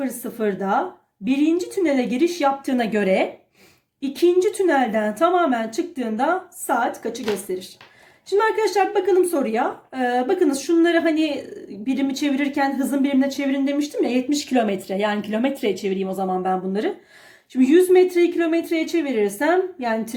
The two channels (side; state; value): both; identical; correlation 1.00